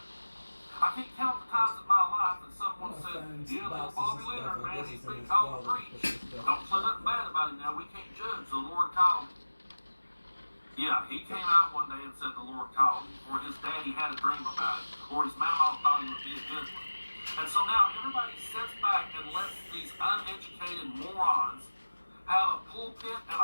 I can't count the times in my life that someone said, yeah, little Bobby Leonard, man, he's been called to preach. Don't say nothing bad about him now. We can't judge. The Lord called him. Yeah, he came out one day and said the Lord called him, or his daddy had a dream about it, or his mama thought he would be a good one. And so now everybody sits back and lets these uneducated morons have a pulpit and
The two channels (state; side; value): inverted; both; correlation -1.00